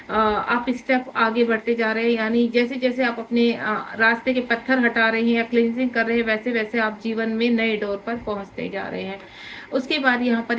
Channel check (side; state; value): both; identical; correlation 1.00